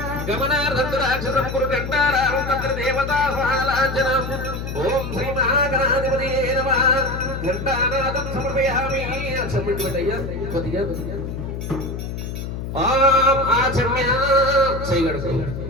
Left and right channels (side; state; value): left; noise; hum, 6 dB below the sound